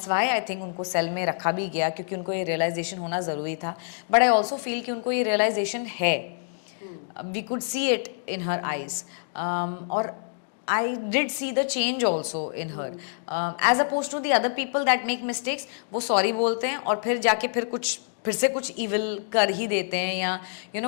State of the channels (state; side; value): silent; right; digital silence